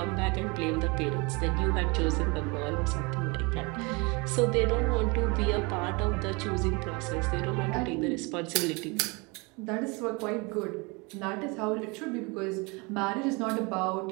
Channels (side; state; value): left; quieter; 28.1 dB